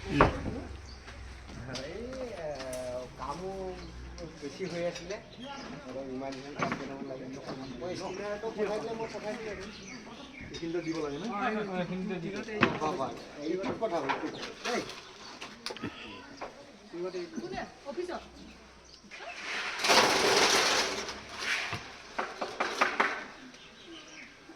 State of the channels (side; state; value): both; identical; correlation 1.00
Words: কামো বেছি হৈ আছিলে ইমান এইখিনিতে দিব লাগে ন কথা